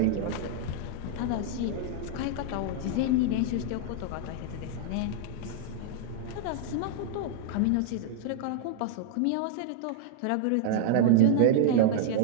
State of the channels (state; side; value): different; both; correlation -0.01